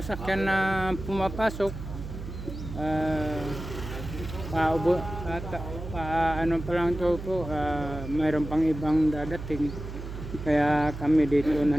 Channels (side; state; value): right; noise; hum, 9 dB below the sound